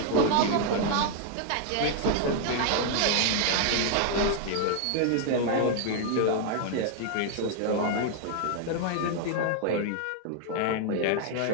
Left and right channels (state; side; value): different; both; correlation 0.00